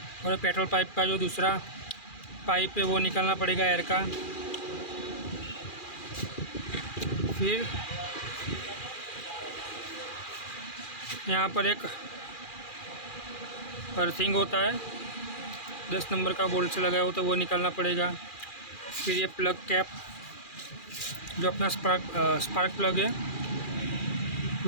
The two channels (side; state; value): right; late; 2.4 ms